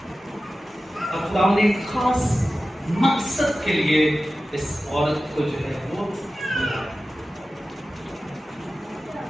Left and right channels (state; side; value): normal; both; correlation 0.94